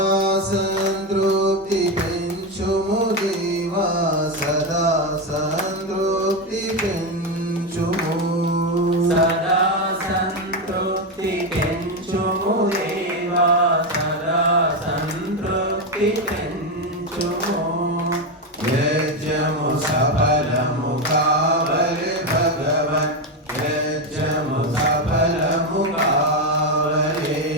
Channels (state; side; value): normal; both; correlation 0.10